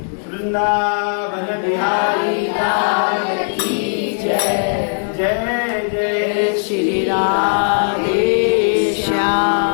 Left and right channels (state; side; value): silent; right; 65 dB below the other